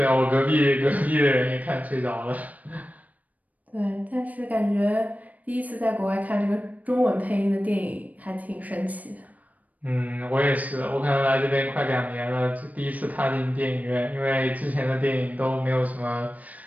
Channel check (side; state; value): left; late; 0.074 ms